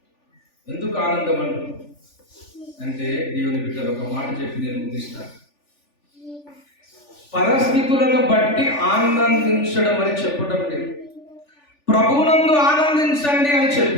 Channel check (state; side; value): late; right; 3.4 ms